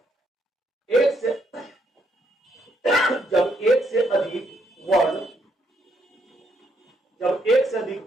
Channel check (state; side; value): normal; both; correlation 0.74